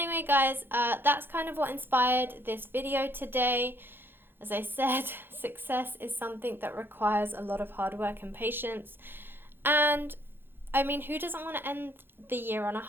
guys, that's kind of what inspired this video today. As I said, success is something that requires a lot of hard work and patience. And, I mean, who doesn't want to end the year on a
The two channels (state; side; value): late; left; 0.10 ms